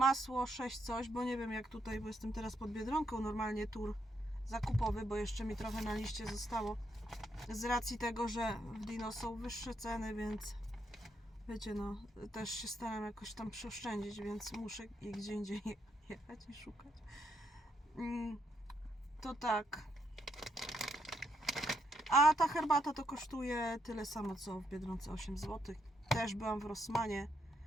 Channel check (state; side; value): normal; both; correlation 0.77